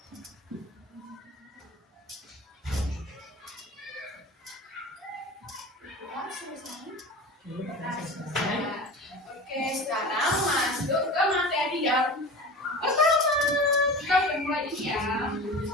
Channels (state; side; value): normal; both; correlation 0.34